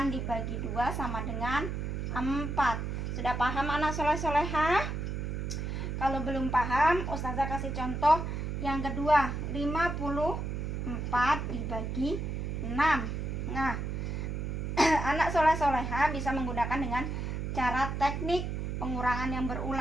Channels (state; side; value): noise; right; hum, 3 dB below the sound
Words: dibagi 2 sama dengan 4. Sudah paham anak soleh-solehah? Kalau belum paham, ustazah kasih contoh yang kedua, 54 dibagi 6. Nah, anak soleh-solehah bisa menggunakan dengan cara teknik pengurangan yang